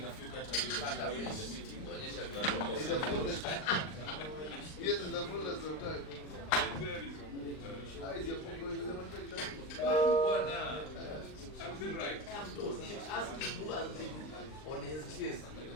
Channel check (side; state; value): right; late; 39 ms